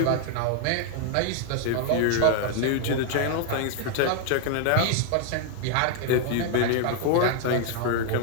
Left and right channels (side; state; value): both; different; correlation 0.00